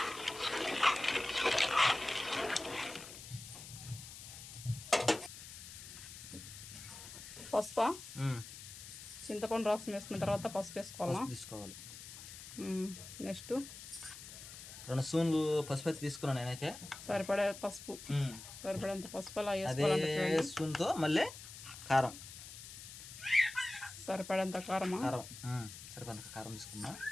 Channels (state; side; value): noise; left; hiss, 13 dB below the sound